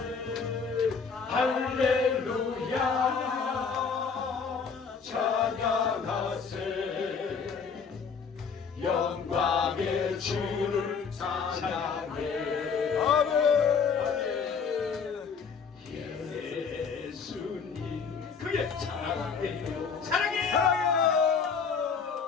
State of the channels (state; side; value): quieter; right; 5.8 dB